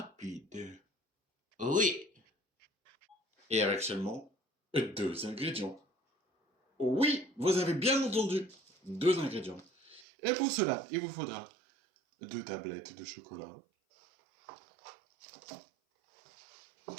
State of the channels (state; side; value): drops out; left; at 10.0 s